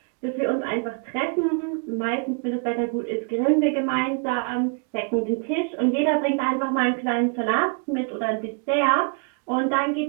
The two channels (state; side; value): quieter; left; 37.2 dB